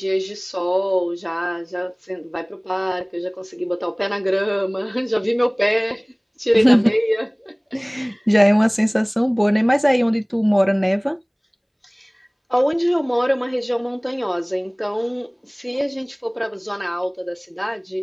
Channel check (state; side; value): identical; both; correlation 1.00